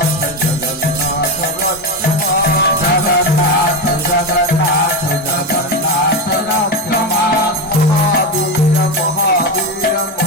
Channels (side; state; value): both; normal; correlation 0.14